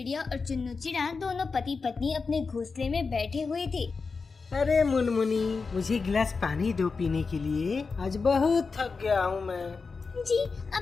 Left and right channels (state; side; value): quieter; right; 4.6 dB